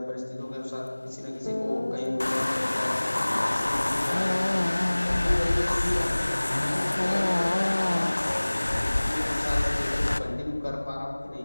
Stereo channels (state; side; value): inverted; both; correlation -1.00